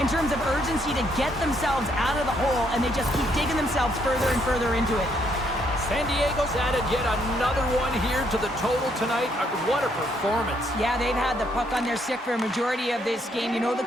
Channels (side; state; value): both; normal; correlation 0.72